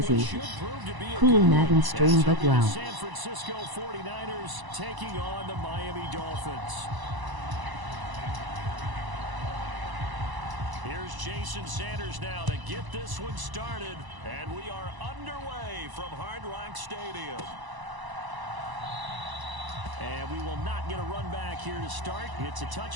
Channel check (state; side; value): late; left; 1.0 ms